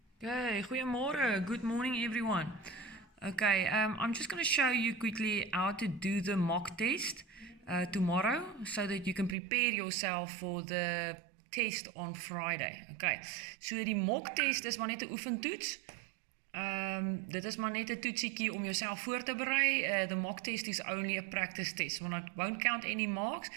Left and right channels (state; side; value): drops out; left; at 9.3 s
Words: Okay, goeiemorgen. Good morning, everyone. Okay, I'm just going to show you quickly how to do the mock test tomorrow so that you can prepare yourself for the test on Friday. Okay, so die mock test is maar net 'n oefentoets. Dit is maar net 'n toetsiekie om jouself voor te berei. The mock test is only a practice test. I won't count any marks